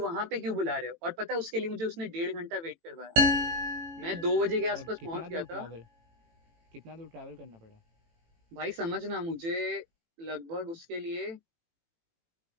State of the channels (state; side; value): late; left; 18 ms